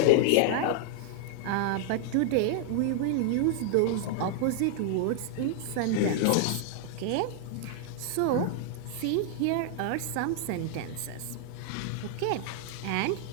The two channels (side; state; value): both; different; correlation 0.00